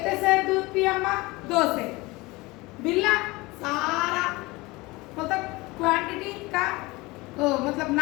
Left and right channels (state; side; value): quieter; right; 22.4 dB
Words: से दूध पी अम्मा, 2 से। बिल्ला सारा मतलब क्वांटिटी का मतलब